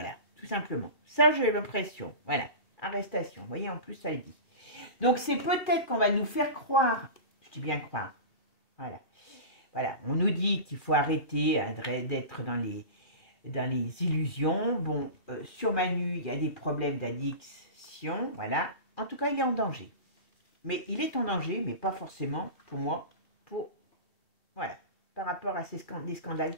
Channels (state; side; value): late; right; 2.4 ms